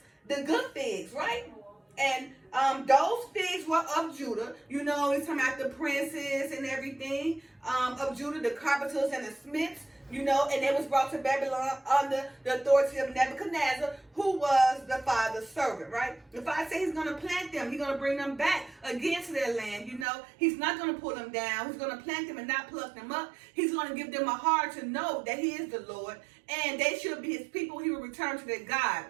the good figs, right? And those figs were of Judah. You know, he's talking about the princes and everything of Judah, the carpenters and the smiths. You know, and they was brought to Babylon under the authority of Nebuchadnezzar, who was the father's servant, right? The father said he's going to plant them. He's going to bring them back again to their land, you know. He's not going to pull them down. He's going to plant them and not pluck them up. He's going to give them a heart to know that he is the Lord, and they should be his people. He will return to their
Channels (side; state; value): left; drops out; at 20.1 s